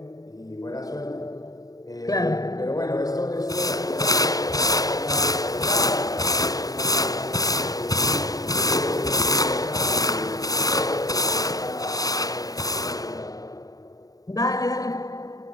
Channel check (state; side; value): late; right; 0.18 ms